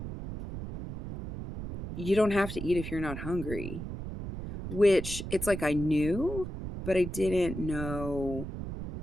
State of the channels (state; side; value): noise; right; rumble, 8 dB below the sound